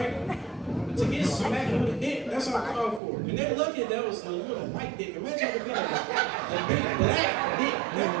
To get smacked with a dick, that's all I called for. And they're lucky that was a little white dick. Imagine if it was a big black dick.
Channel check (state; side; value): drops out; left; at 3.0 s